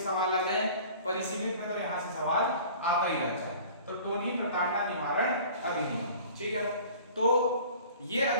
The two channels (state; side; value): inverted; both; correlation -0.46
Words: सवाल आ जाए, परिसीमित में तो यहाँ से सवाल आता ही रहता है। तो टोनी प्रताड़ना निवारण अधिनियम, ठीक है, तो ये